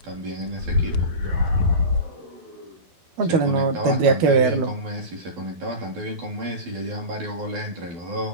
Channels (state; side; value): late; left; 12 ms